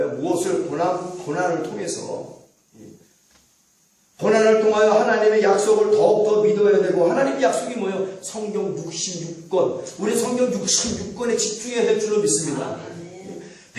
무엇을 고난을 통해서 고난을 통하여 하나님의 약속을 더욱더 믿어야 되고, 하나님의 약속이 뭐예요? 성경 66권. 우리 성경 66권에 집중해야 될 줄로 믿습니다.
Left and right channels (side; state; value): both; identical; correlation 1.00